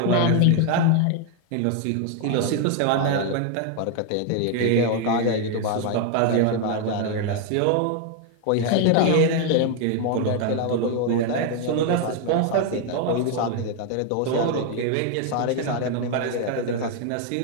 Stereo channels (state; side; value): different; both; correlation 0.01